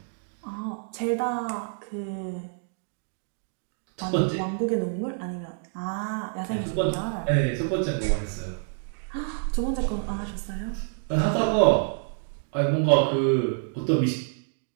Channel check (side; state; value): left; silent; digital silence